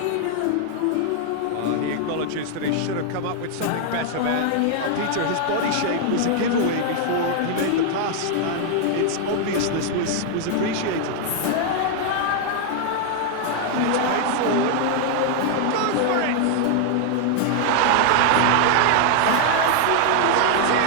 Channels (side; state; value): both; different; correlation 0.00